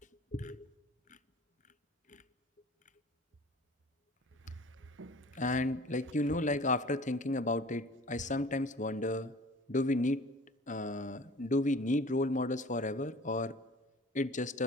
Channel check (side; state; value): both; normal; correlation 0.45